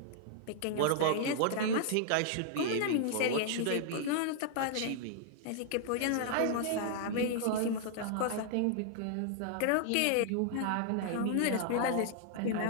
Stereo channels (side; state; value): both; different; correlation -0.01